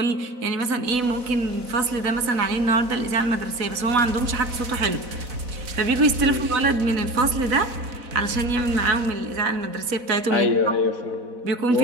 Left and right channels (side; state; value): left; late; 4.0 ms